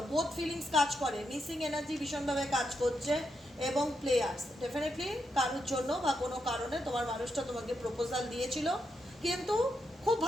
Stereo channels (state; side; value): normal; both; correlation 0.83